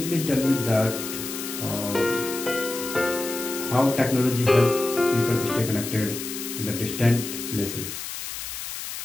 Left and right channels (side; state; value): left; noise; hiss, 7 dB below the sound